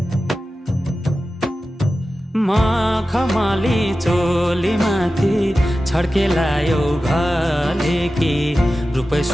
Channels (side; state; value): both; normal; correlation 0.94